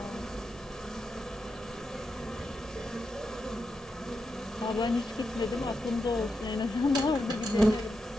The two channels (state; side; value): normal; both; correlation 0.86